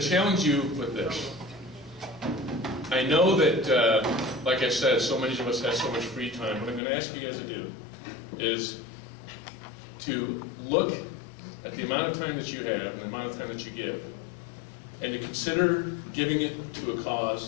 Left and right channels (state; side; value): drops out; right; at 6.8 s